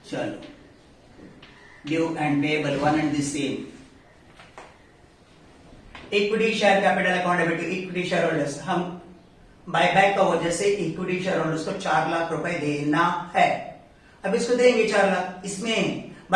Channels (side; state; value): both; identical; correlation 1.00